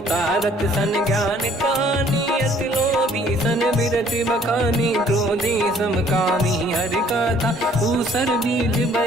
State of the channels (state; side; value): normal; both; correlation 0.59